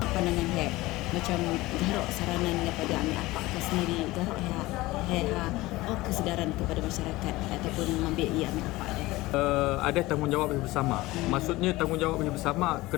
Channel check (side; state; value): right; quieter; 19.4 dB